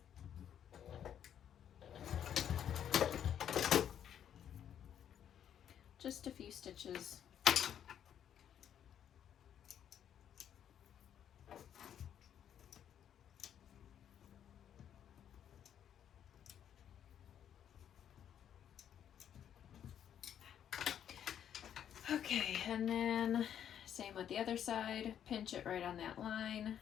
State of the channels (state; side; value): quieter; right; 9.5 dB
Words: Just a few stitches. Okay, and then same with the other side, pinch it right on that line